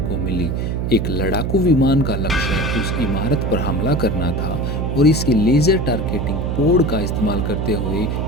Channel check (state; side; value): noise; right; hum, 1 dB below the sound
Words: मिली। एक लड़ाकू विमान का लक्ष्य उस इमारत पर हमला करना था और इसके लेजर टारगेटिंग पोड का इस्तेमाल करते हुए